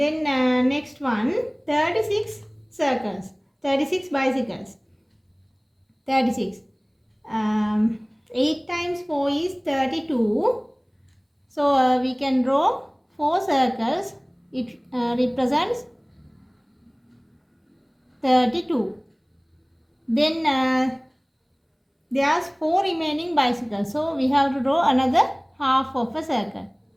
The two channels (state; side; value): identical; both; correlation 1.00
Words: next one, 36 circles, 36 bicycles, 36. 8 times 4 is 32. So we can draw 4 circles. It represents 32. Then there's 4 remaining bicycles. So we have to draw another half of a circle.